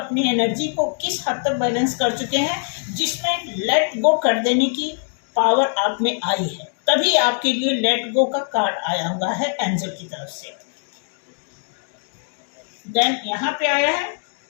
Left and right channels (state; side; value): silent; right; 59 dB below the other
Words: एनर्जी को किस हद तक बैलेंस कर चुके हैं, जिसमें लेट गो कर देने की पावर आप में आई है। तभी आपके लिए लेट गो का कार्ड आया हुआ है एंजल की तरफ से। देन यहां पे आया है